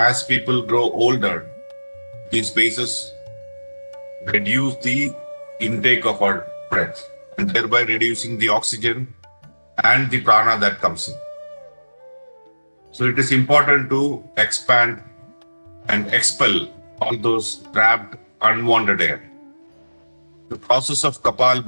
people grow older, these spaces reduce the intake of our breath, and thereby reducing the oxygen and the prana that comes in. So it is important to expand and expel all those trapped, unwanted air. The process of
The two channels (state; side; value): inverted; both; correlation -1.00